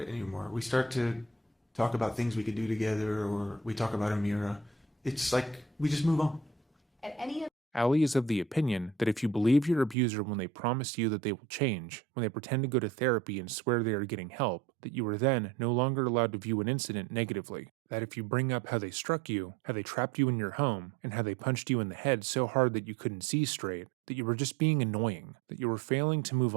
anymore. We start to talk about things we could do together, or we talk about Amira. It's like we just move on. At any of Allie is of the opinion that if you believe your abuser when they promise you that they will change, when they pretend to go to therapy and swear they are getting help, that you are then no longer allowed to view an incident negatively. That if you bring up how they struck you, how they trapped you in your home, and how they punched you in the head so hard that you couldn't see straight, that you were just being annoying, that you were failing to move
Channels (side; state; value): left; drops out; at 10.0 s